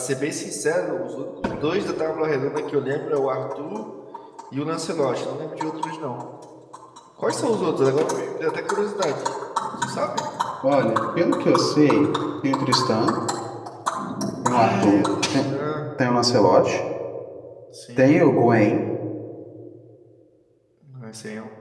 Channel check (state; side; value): identical; both; correlation 1.00